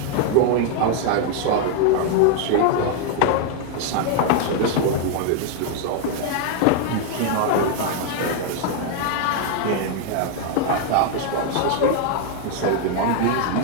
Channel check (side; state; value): both; different; correlation 0.00